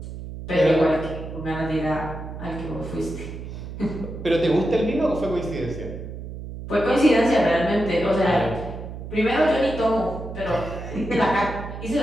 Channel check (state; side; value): noise; right; hum, 10 dB below the sound